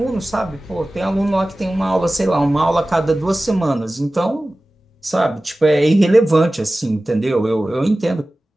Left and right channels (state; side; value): normal; both; correlation 0.97